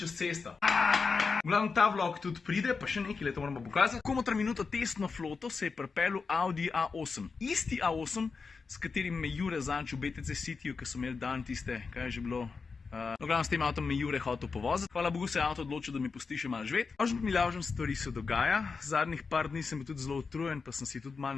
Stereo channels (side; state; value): right; quieter; 4.8 dB